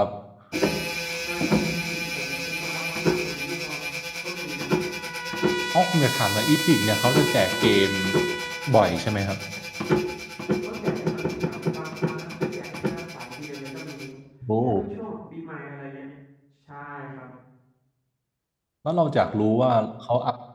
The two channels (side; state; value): both; identical; correlation 1.00